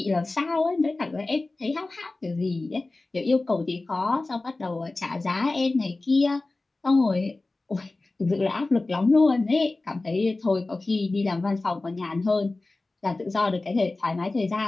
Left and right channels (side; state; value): right; quieter; 3.2 dB